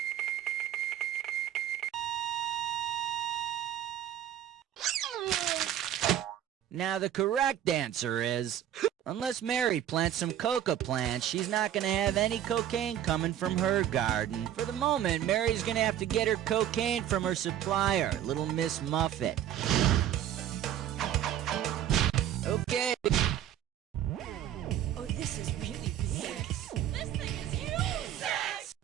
Now the correct answer is, unless Mary plants some coca plants, she's not going to have any cocaine coming from her garden. For the moment, Mary's going to have to get her cocaine from her supplier, Little Miss Muffet. Okay. Oh, this is really big. This thing is huge.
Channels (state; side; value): quieter; left; 10.9 dB